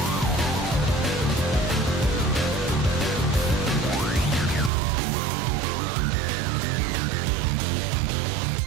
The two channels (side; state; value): left; drops out; at 4.7 s